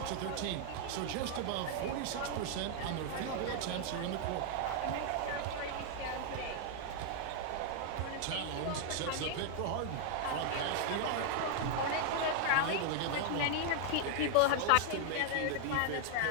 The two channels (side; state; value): both; different; correlation 0.00